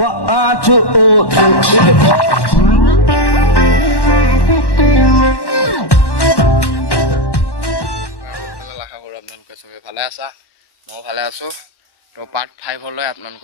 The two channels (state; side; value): late; right; 1.1 ms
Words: চবে ভালে আছা, ময়ো ভালে আছোঁ। তো পাৰ্ট 5লৈ